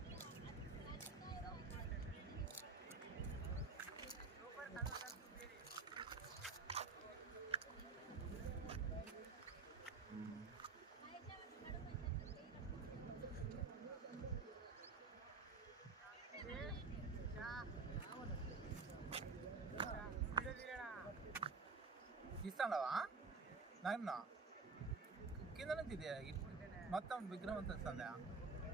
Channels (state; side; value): quieter; left; 4.3 dB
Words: తీస్తావా నాయన? కింద నుంచి ఇది మొత్తం విగ్రహం అంతా వస్తుందా?